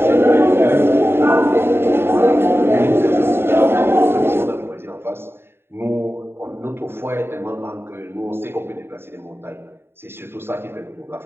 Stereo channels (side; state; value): left; late; 0.11 ms